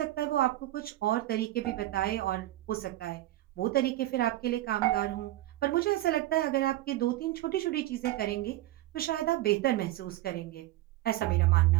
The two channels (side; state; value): left; quieter; 15.8 dB